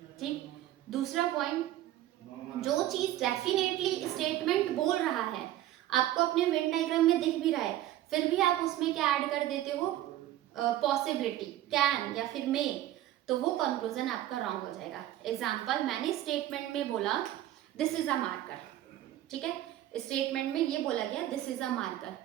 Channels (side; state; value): left; quieter; 13.8 dB